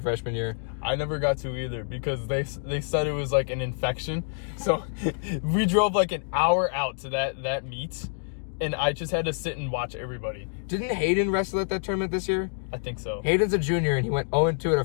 year. I never got to either because they said it was like an infection. So we drove like an hour out to that meet, and I just had to sit and watch everybody. Didn't Hayden wrestle at that tournament this year? I think so. Hayden's a junior, and he went 0-2 at a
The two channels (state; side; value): silent; right; digital silence